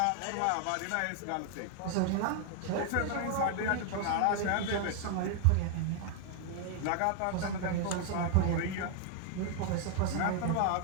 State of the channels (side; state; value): both; different; correlation 0.00